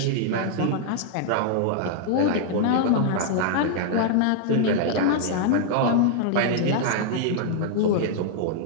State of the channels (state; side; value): different; both; correlation -0.01